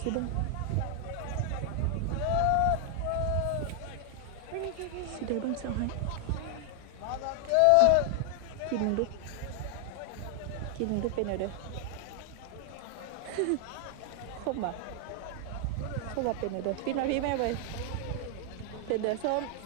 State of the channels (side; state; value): both; different; correlation 0.00